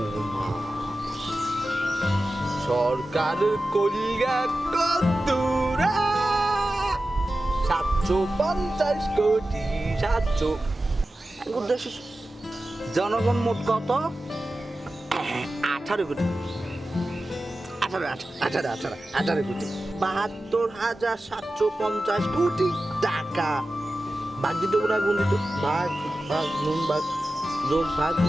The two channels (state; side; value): normal; both; correlation 0.94